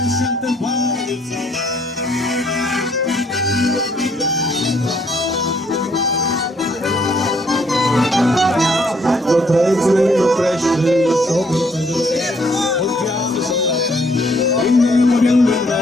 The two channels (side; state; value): both; normal; correlation 0.67